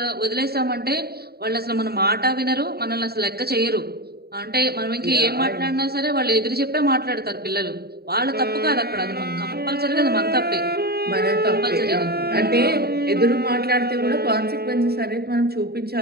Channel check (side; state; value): left; late; 0.46 ms